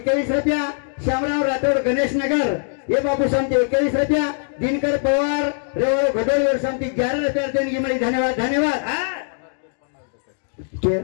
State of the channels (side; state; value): right; silent; digital silence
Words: रुपया श्यामराव राठौर गणेश नगर ये बाबू शांति 21 रुपया दिनकर पवार रेवाड़ो घडोली और शांति 11 रुपया देणगी मिली धन्यवाद धन्यवाद